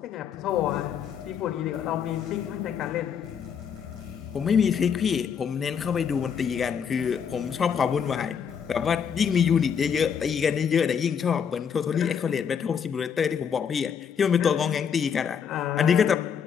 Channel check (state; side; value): quieter; right; 7.4 dB